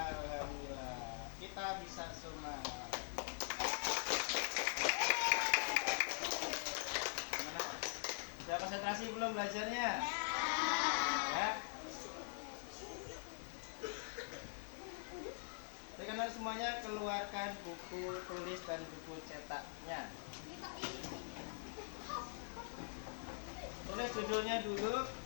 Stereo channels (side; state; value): right; silent; digital silence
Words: kita bisa semua. Gimana? Sudah konsentrasi belum belajarnya? Ya. Sekarang semuanya keluarkan buku tulis dan buku cetaknya. Tulis judulnya dulu,